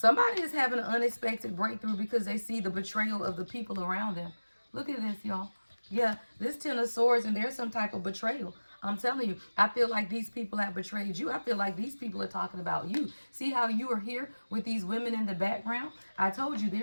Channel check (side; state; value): both; inverted; correlation -1.00